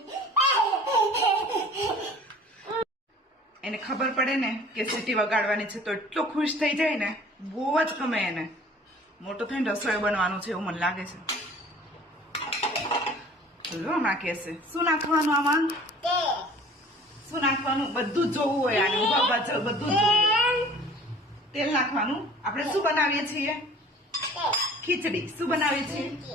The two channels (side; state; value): both; normal; correlation 0.48